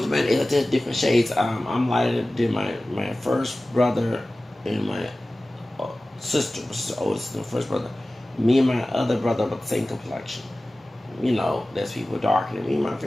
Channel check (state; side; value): normal; both; correlation 0.97